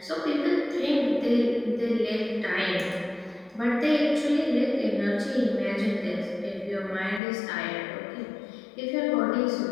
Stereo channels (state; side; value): drops out; right; at 7.2 s